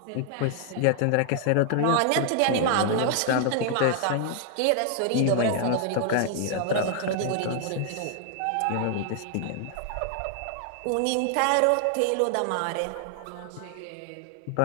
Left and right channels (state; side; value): different; both; correlation 0.00